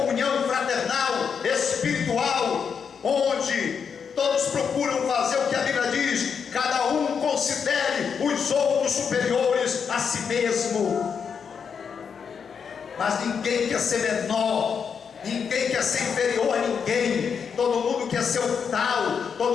fraternal, espiritual, onde todos procuram fazer o que a Bíblia diz: cada um considere os outros superiores a si mesmo. Mas ninguém quer ser menor, ninguém quer ser inferior a ninguém. Todo mundo quer ser o tal,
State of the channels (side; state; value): right; quieter; 6.6 dB